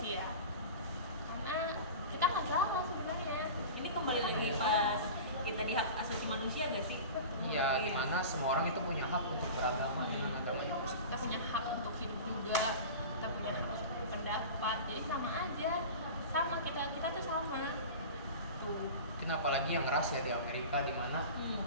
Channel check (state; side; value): inverted; both; correlation -0.33